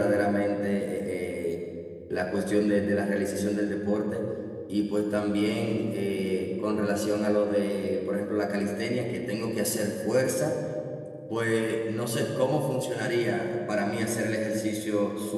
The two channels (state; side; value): identical; both; correlation 1.00